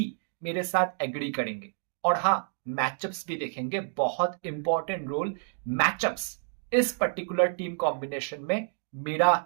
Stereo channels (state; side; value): silent; left; digital silence